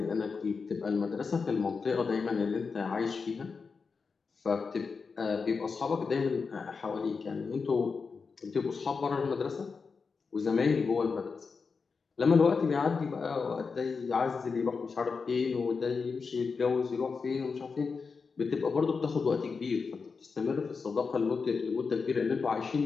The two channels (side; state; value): right; quieter; 5.0 dB